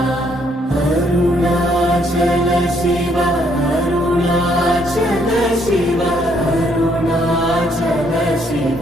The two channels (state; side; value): normal; both; correlation 0.69